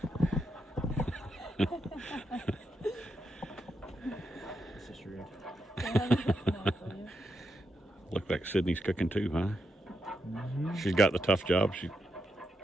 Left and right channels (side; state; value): both; normal; correlation 0.83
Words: This is rude. Look like Sydney's cooking too, huh? She's got the tough job.